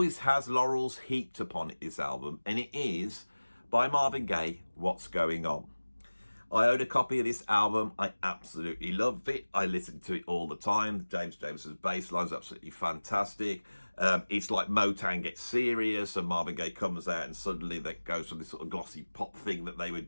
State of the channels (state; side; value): inverted; both; correlation -1.00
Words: has laurels heaped upon it, this album, and it is, by Marvin Gaye, What's Going On. I own a copy of this album. I absolutely love it. I listen to it all the time. James Jameson's bass line is absolutely fantastic. It's like Motown gets serious and Marvin Gaye comes out and suddenly that goes from this sort of glossy pop thing that they were